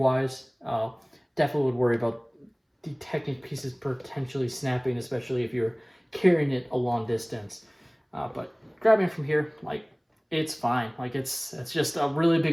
Definitely would worry about the Technic pieces potentially snapping, especially if you're carrying it a long distance. But grabbing it from here, it's fine. It's just a really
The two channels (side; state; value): both; identical; correlation 1.00